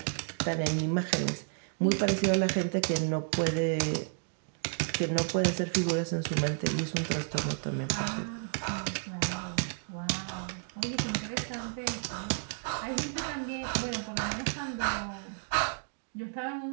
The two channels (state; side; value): silent; left; 57 dB below the other